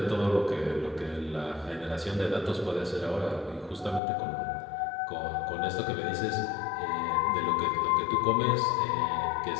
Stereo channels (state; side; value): drops out; right; at 4.0 s